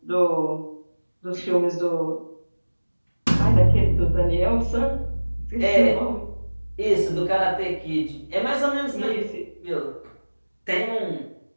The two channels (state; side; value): inverted; both; correlation -1.00